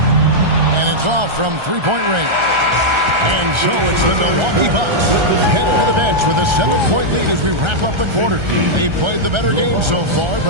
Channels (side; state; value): left; late; 1.3 ms